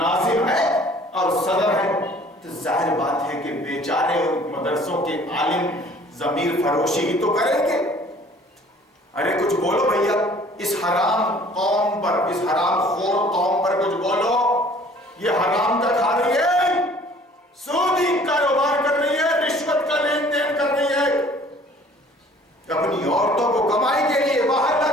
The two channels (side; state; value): both; normal; correlation 0.53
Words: ہے اور صدر ہے. تو ظاہر بات ہے کہ بیچارے ان مدرسوں کے عالم ضمیر فروشی ہی تو کریں گے. ارے کچھ بولو بھیا، اس حرام قوم پر، اس حرام خور قوم پر کچھ بولو. یہ حرام کا کھا رہی ہے، سودی کاروبار کر رہی ہے، رشوت کا لین دین کر رہی ہے، اپنی عورتوں کو کمائی کے لیے باہر